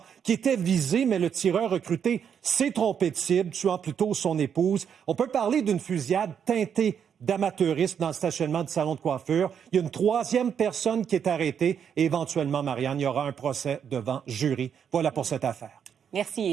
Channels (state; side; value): quieter; left; 7.8 dB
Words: qui était visé, mais le tireur recruté s'est trompé de cible, tuant plutôt son épouse. On peut parler d'une fusillade teintée d'amateurisme dans le stationnement du salon de coiffure. Il y a une troisième personne qui est arrêtée et éventuellement, Marianne, il y aura un procès devant jury. Voilà pour cette affaire.